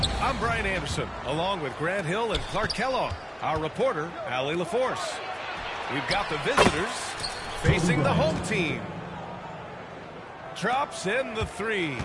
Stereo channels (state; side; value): identical; both; correlation 1.00